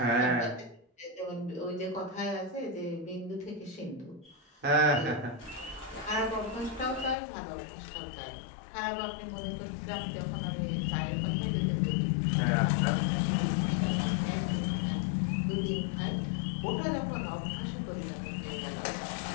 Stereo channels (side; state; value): right; drops out; at 7.2 s